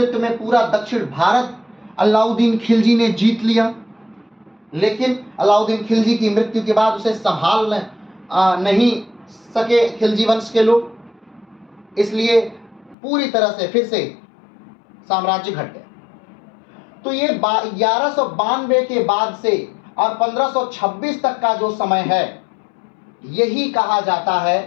में पूरा दक्षिण भारत अलाउद्दीन खिलजी ने जीत लिया। लेकिन अलाउद्दीन खिलजी की मृत्यु के बाद उसे संभाल नहीं सके खिलजी वंश के लोग, इसलिए पूरी तरह से फिर से साम्राज्य घट गया। तो ये 1192 के बाद से और 1526 तक का जो समय है यही कहा जाता है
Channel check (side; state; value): right; drops out; at 13.0 s